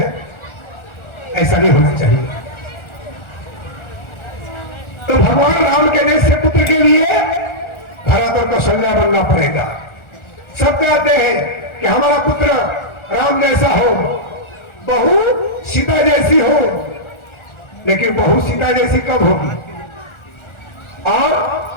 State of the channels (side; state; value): right; late; 1.4 ms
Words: ऐसा नहीं होना चाहिए। तो भगवान राम के जैसे पुत्र के लिए भरत और कौशल्या बनना पड़ेगा। सब कहते हैं कि हमारा पुत्र राम जैसा हो, बहू सीता जैसी हो, लेकिन बहू सीता जैसी कब होगी और